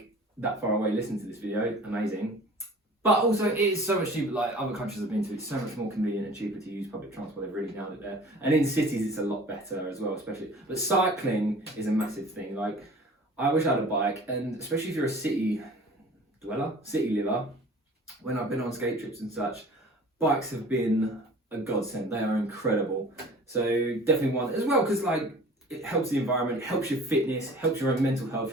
that far away listen to this video, amazing. But also it is so much cheaper, like other countries I've been to, it's so much more convenient and cheaper to use public transport, they've really nailed it there. And in cities it's a lot better as well, especially. But cycling is a massive thing. Like, I wish I had a bike, and especially if you're a city liver, when I've been on skate trips and such, bikes have been a godsend, they are incredible. So definitely one, as well, because like, it helps the environment, helps your fitness, helps your own mental health,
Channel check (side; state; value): both; normal; correlation 0.45